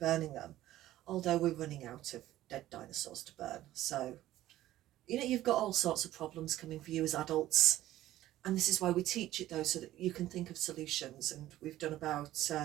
them, although we're running out of dead dinosaurs to burn. So you've got all sorts of problems coming for you as adults, and this is why we teach it, though, so that you can think of solutions. And we've done about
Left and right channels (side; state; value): left; quieter; 14.5 dB